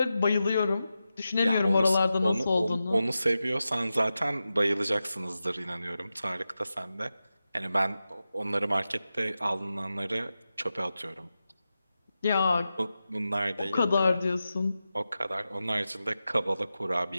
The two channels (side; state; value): both; inverted; correlation -0.92